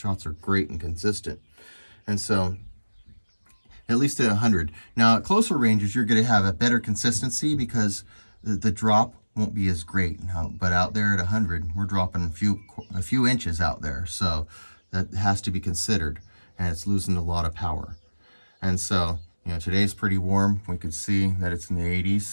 are great and consistent. And so, at least at 100. Now, at closer ranges, you're going to have a better consistency because the drop won't be as great. But out there at 100, we're dropping a few inches out there. So that has to be considered. And it's losing a lot of power. And so, you know, today's pretty warm. We could see that it's in the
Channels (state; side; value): inverted; both; correlation -1.00